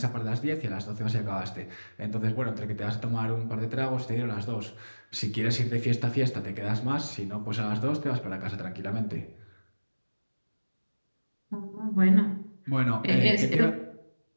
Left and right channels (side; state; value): both; inverted; correlation -1.00